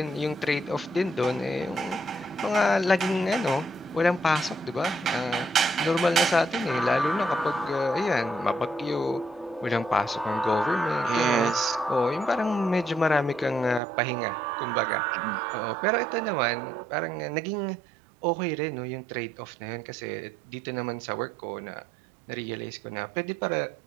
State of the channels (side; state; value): left; drops out; at 13.8 s